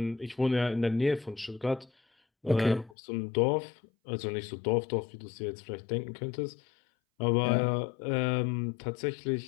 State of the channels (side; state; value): right; drops out; at 3.0 s